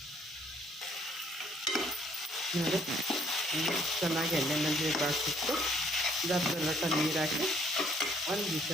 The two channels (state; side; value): normal; both; correlation 0.65